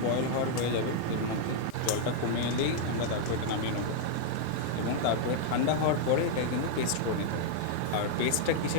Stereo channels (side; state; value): both; different; correlation -0.01